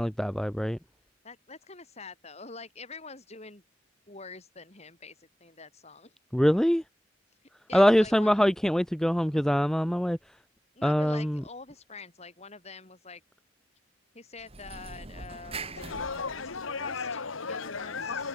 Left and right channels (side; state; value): both; normal; correlation 0.91